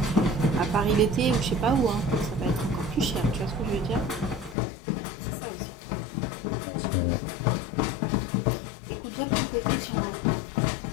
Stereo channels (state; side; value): drops out; right; at 4.5 s